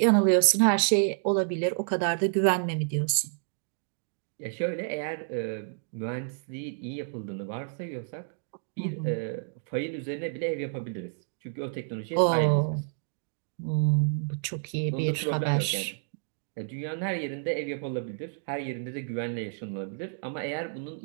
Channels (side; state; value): left; silent; digital silence